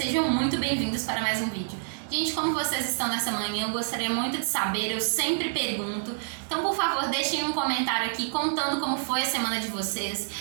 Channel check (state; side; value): silent; left; digital silence